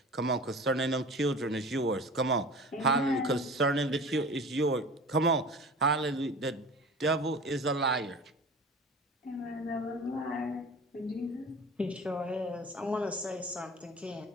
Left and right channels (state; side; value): normal; both; correlation 0.38